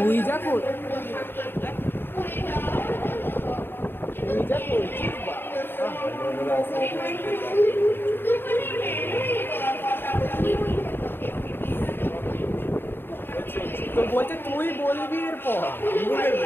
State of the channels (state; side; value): late; right; 0.10 ms